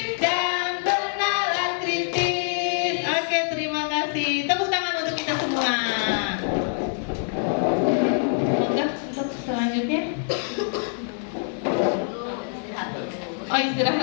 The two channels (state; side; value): silent; right; 62 dB below the other